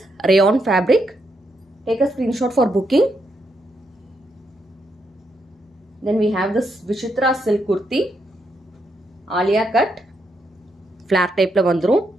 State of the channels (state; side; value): normal; both; correlation 0.80